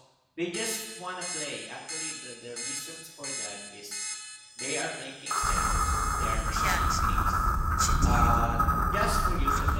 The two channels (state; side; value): identical; both; correlation 1.00